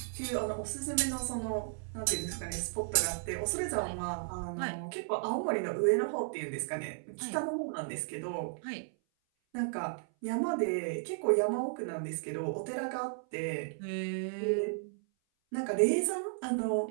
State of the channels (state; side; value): silent; left; 55 dB below the other